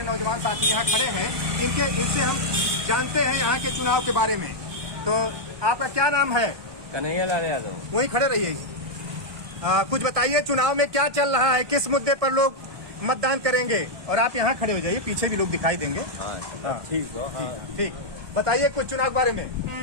नौजवान साथी यहाँ खड़े हैं। इनसे हम जानते हैं यहाँ के चुनाव के बारे में। तो आपका क्या नाम है? कन्हैया लाल यादव। वहीं खड़े रहिए। कुछ बताइए, चुनाव में क्या चल रहा है, किस मुद्दे पर लोग मतदान करेंगे? और आप यहाँ खड़े हो जाइए, पीछे भी लोग दिखाई देंगे। हाँ, ठीक हो। हाँ। ठीक, बताइए कुछ चुनाव के बारे में।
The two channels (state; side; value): late; left; 1.2 ms